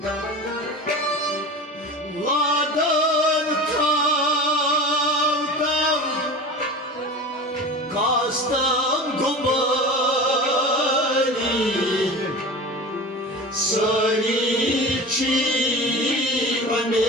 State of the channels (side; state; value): both; normal; correlation 0.33